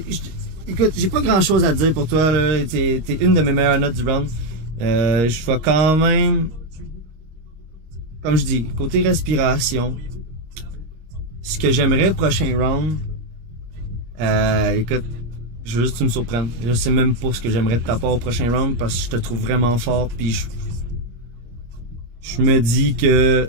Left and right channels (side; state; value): left; late; 26 ms